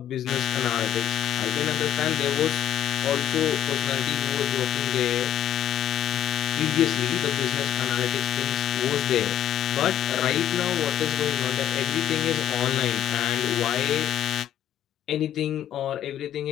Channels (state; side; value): quieter; right; 11.3 dB